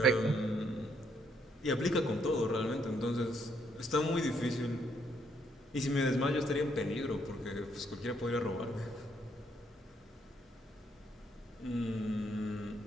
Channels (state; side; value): normal; both; correlation 0.72